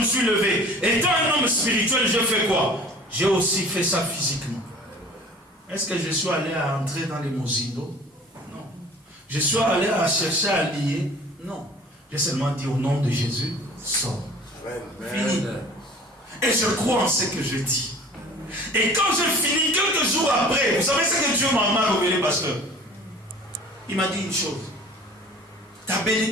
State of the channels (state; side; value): normal; both; correlation 0.46